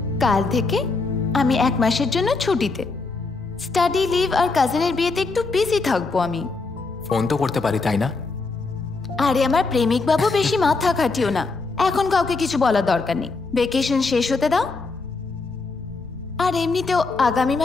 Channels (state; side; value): quieter; right; 3.9 dB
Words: কাল থেকে আমি 1 মাসের জন্য ছুটিতে। স্টাডি লিভ আর কাজিনের বিয়েতে একটু বিজি থাকবো আমি। ফোন তো করতে পারি, তাই না? আরে আমার প্রেমিক বাবু, বেশি মাথা খাটিও না। এখন কাউকে কিছু বলার দরকার নেই। ভেকেশন শেষ হতে দাও। আর এমনিতেও আগামী